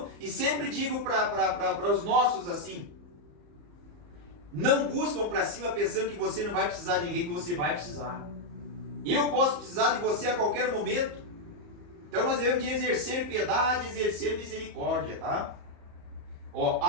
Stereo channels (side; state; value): left; late; 34 ms